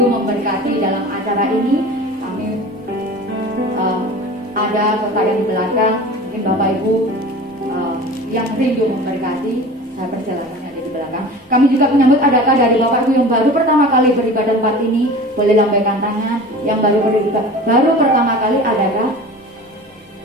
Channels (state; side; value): normal; both; correlation 0.38